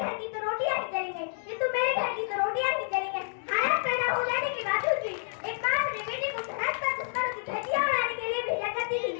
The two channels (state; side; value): silent; right; 58 dB below the other